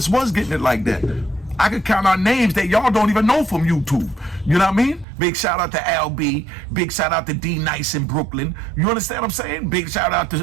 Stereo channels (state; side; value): drops out; left; at 5.1 s